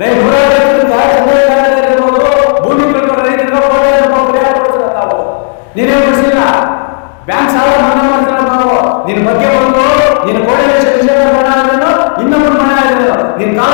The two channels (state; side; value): silent; right; digital silence